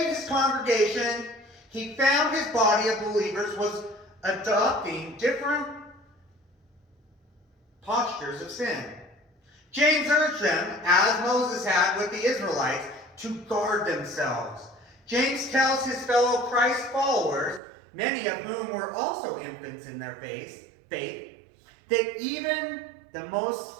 his congregation, he found his body of believers was adopting different postures of sin. James urged them, as Moses had with the Israelites, to guard themselves. James tells his fellow Christ followers, many of whom were also infants in their faith, that even the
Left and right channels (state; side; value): drops out; left; at 17.6 s